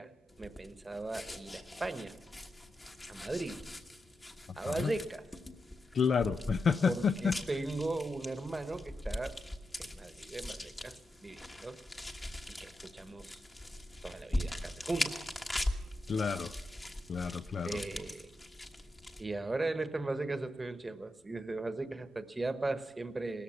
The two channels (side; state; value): both; normal; correlation 0.88